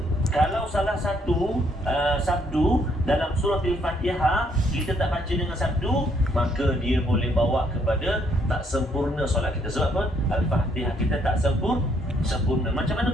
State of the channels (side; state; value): both; normal; correlation 0.69